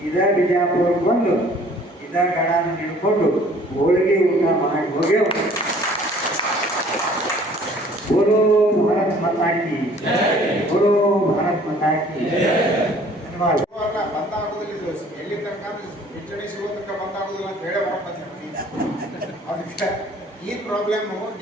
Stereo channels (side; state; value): both; normal; correlation 0.54